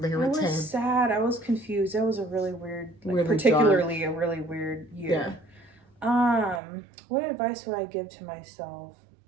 were 10. I was sad. I was confused. That was a really weird, really particularly dark. a really weird year. Yeah. What advice would I give to myself?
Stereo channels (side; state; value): left; drops out; at 6.6 s